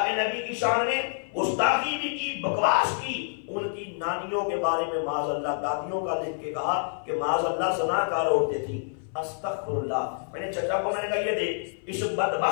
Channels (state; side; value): silent; right; 58 dB below the other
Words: کے نبی کی شان میں گستاخی بھی کی، بکواس کی. ان کی نانیوں کے بارے میں معاذ اللہ دادیوں کا لکھ کے کہا کہ معاذ اللہ زناکار عورتیں تھیں. استغفر اللہ. میں نے چچا کو میں نے کہا یہ دیکھ، اس